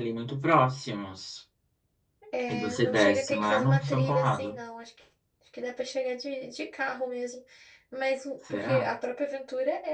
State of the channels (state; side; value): identical; both; correlation 1.00